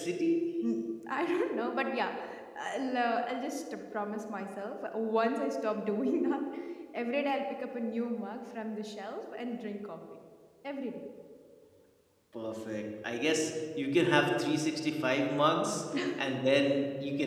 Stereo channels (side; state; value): both; identical; correlation 1.00